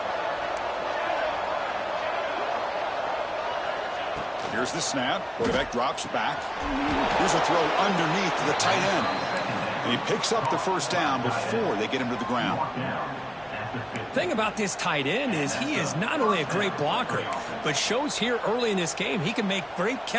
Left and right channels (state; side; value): identical; both; correlation 1.00